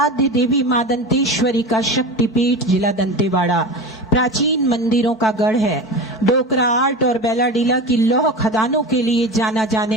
देवी मां दंतेश्वरी का शक्तिपीठ जिला दंतेवाड़ा प्राचीन मंदिरों का गढ़ है। डोकरा आर्ट और बेलाडीला की लौह खदानों के लिए जाना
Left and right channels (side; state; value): both; normal; correlation 0.28